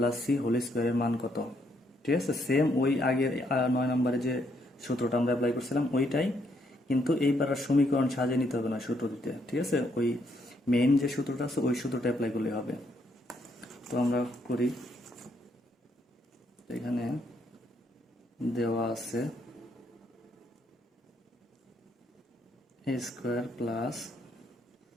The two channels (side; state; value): both; normal; correlation 0.73